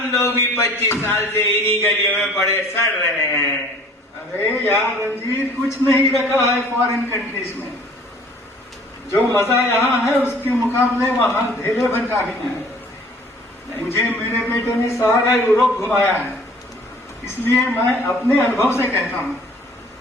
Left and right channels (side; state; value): both; normal; correlation 0.52